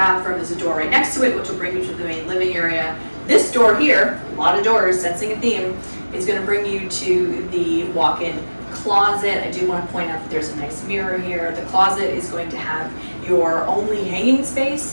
There's a door right next to it, which will bring you to the main living area. This door here, a lot of doors, sensing a theme, is going to bring you to the walk-in closet. I do want to point out that there's a nice mirror here. The closet is going to have your only hanging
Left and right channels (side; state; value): both; inverted; correlation -1.00